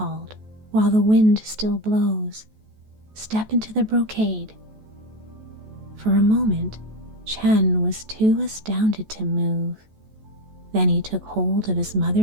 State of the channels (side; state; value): left; late; 14 ms